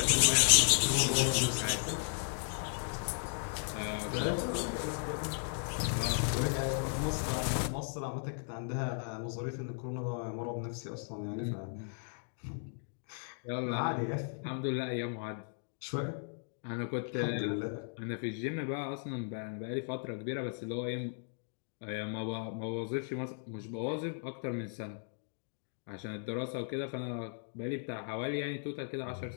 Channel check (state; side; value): silent; right; digital silence